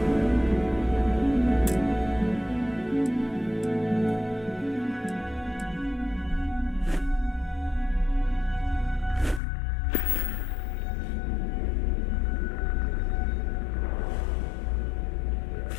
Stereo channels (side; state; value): right; drops out; at 9.4 s